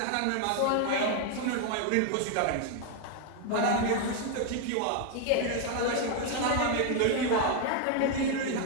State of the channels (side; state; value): both; different; correlation 0.00